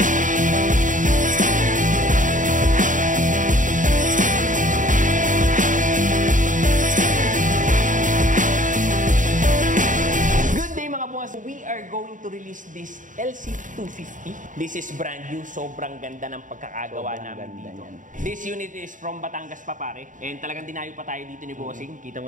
To release this LC250. This is brand new. Sobrang ganda ng pagkakagawa namin dito. This unit is from Batangas pa pare. And talagang dinayo pa tayo dito ni Bossing. Kita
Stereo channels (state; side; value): late; left; 0.37 ms